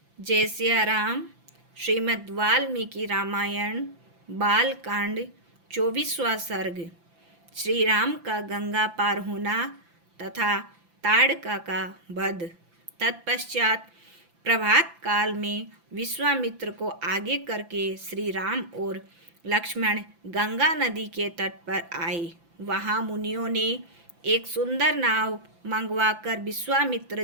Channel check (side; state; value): left; late; 5.9 ms